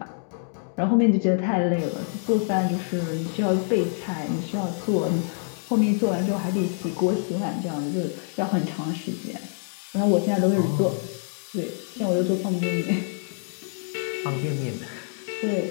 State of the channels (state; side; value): silent; right; digital silence